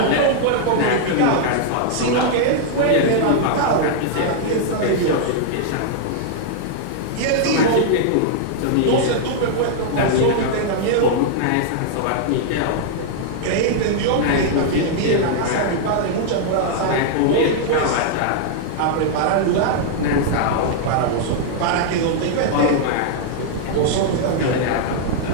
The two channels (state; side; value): different; both; correlation -0.01